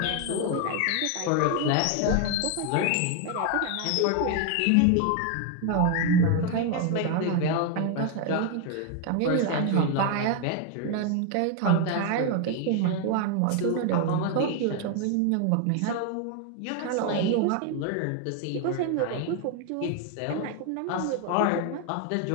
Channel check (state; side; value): different; both; correlation 0.01